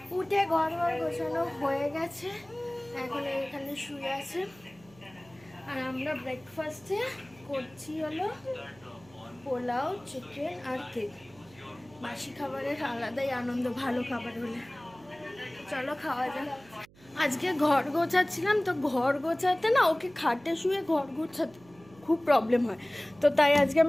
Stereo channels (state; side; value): noise; right; hum, 26 dB below the sound